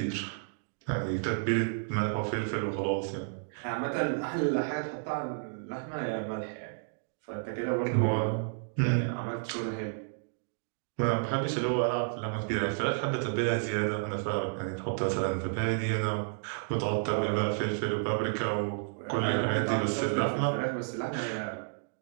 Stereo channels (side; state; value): left; silent; digital silence